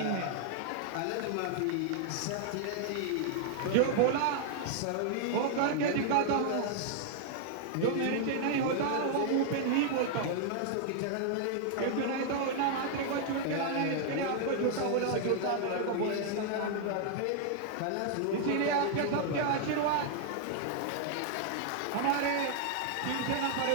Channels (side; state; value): both; different; correlation 0.00